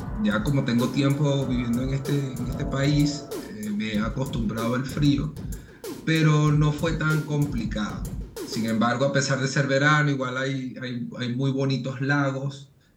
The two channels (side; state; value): both; identical; correlation 1.00